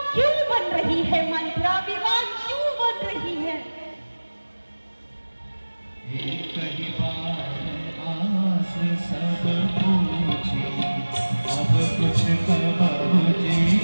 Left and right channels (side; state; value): both; inverted; correlation -1.00